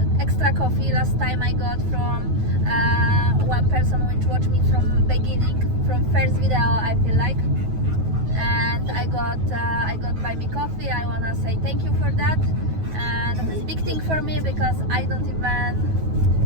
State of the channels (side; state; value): left; late; 9.3 ms